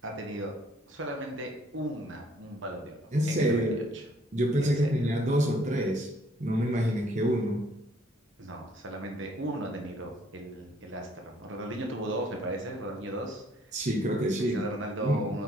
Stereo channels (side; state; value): both; normal; correlation 0.63